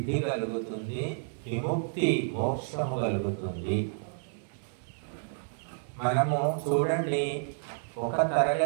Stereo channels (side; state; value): left; silent; 58 dB below the other